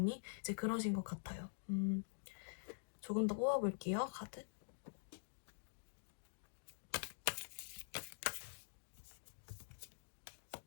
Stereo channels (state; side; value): silent; right; digital silence